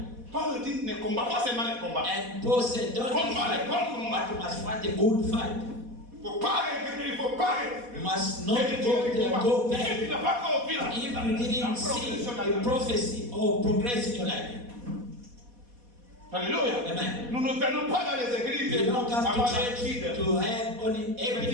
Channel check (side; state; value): left; late; 4.1 ms